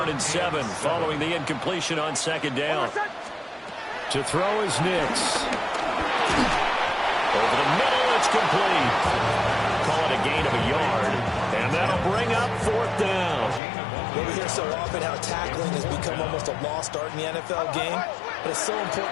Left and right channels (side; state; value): right; drops out; at 13.6 s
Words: and 7 following the incompletion on 2nd down. To throw is Nix. Over the middle, it's complete. Call it a gain of a yard, and that'll bring up 4th down. We hear so often how tackling has become almost a lost art in the NFL game, but it's so